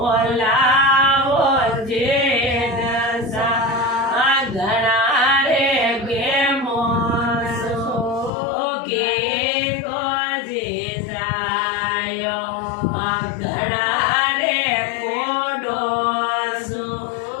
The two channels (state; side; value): drops out; right; at 8.3 s